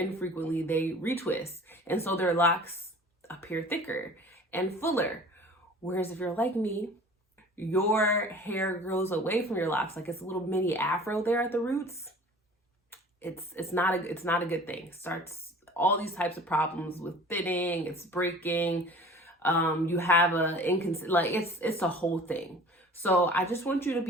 they retwist. And so their locks appear thicker and fuller. Whereas if you're like me, your hair grows away from your locks, like it's a little mini afro there at the roots. It's not a good thing. Starts all these types of problems with thinning, it's breaking. You have it's a whole thing. So I just want you to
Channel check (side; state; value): both; normal; correlation 0.44